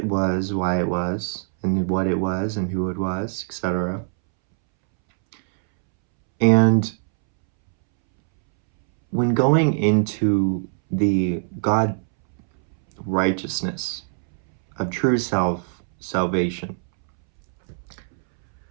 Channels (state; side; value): silent; left; 64 dB below the other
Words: was, and what it was, and who it was, etc. And when going into the God righteousness of true salvation,